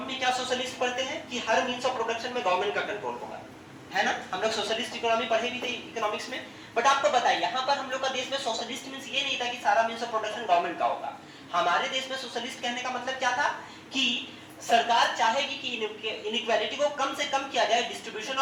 में क्या सोशलिस्ट पढ़ते हैं कि हर मींस ऑफ प्रोडक्शन में गवर्नमेंट का कंट्रोल होगा, है ना। हम लोग सोशलिस्ट इकोनॉमी पढ़े भी थे इकोनॉमिक्स में। बट आपको बताइए यहाँ पर हम लोग का देश में सोशलिस्ट मींस ये नहीं था कि सारा मींस ऑफ प्रोडक्शन गवर्नमेंट का होगा। हमारे देश में सोशलिस्ट कहने का मतलब क्या था कि सरकार चाहेगी कि इनइक्वालिटी को कम से कम किया जाए, डिस्ट्रीब्यूशन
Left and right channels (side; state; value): both; identical; correlation 1.00